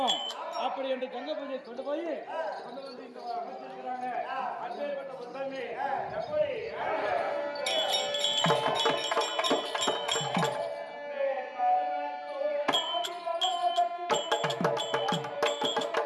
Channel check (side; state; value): both; identical; correlation 1.00